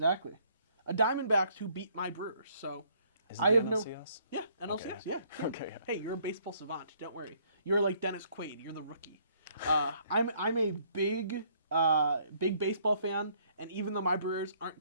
A Diamondbacks who beat my Brewers. So Is it I have NLCS? Yeah, NLCS. Okay. Yeah. Cool. Okay. Yeah. Hey, you're a baseball savant. Don't worry. You're like Dennis Quaid. You're the rookie. I'm a big baseball fan, and even though my Brewers aren't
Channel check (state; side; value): inverted; both; correlation -0.64